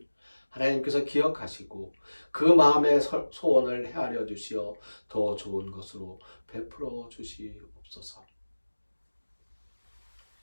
하나님께서 기억하시고 그 마음의 소원을 헤아려 주시어 더 좋은 것으로 베풀어 주시옵소서.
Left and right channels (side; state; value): both; inverted; correlation -1.00